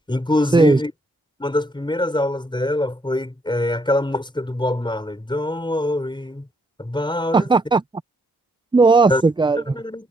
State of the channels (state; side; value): normal; both; correlation 0.73